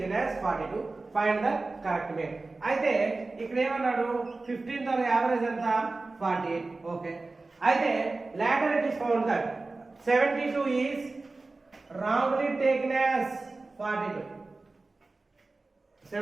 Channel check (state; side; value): quieter; left; 3.5 dB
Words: as 42. Find the correct mean. అయితే ఇక్కడ ఏమన్నాడు 15 తో యావరేజ్ ఎంత 48. ఓకే, అయితే later it is found that 72 is wrongly taken as 42.